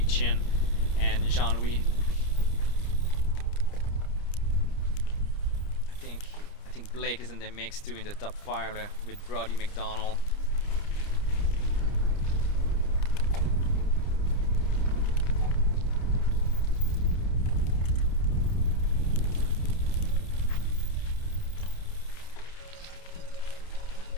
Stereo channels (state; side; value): late; right; 30 ms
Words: and Jean-Louis. I think Blake is in the mix too, in the top 5 with Brody McDonald.